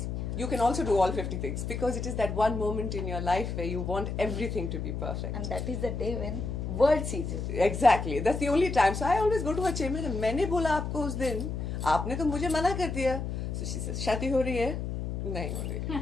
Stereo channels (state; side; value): noise; left; hum, 4 dB below the sound